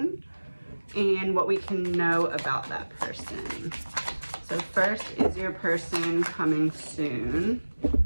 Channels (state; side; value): inverted; both; correlation -1.00